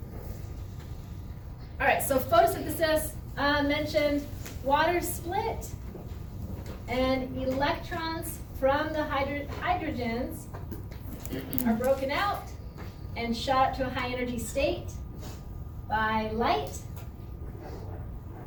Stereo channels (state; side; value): identical; both; correlation 1.00